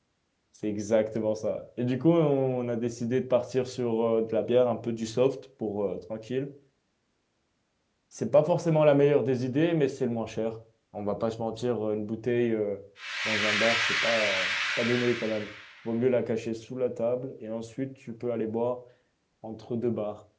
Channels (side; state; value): both; identical; correlation 1.00